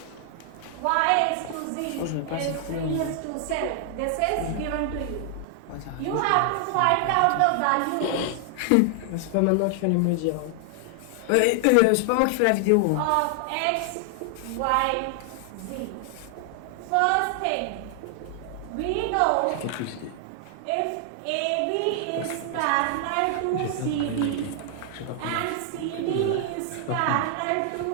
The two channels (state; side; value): different; both; correlation 0.00